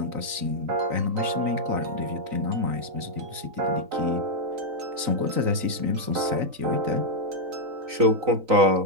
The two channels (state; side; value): late; left; 3.9 ms